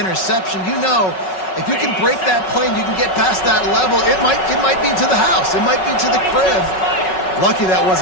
you know, if you can break that play and you can get past that level, it might be to the house. It might be to the crib. Lucky that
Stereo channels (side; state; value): right; late; 5.4 ms